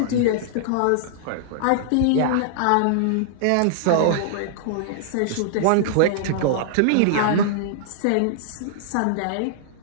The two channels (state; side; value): different; both; correlation -0.01